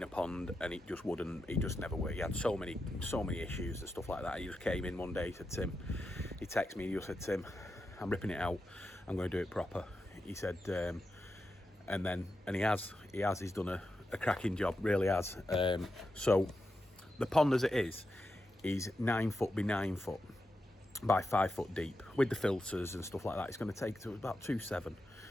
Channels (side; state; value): both; normal; correlation 0.88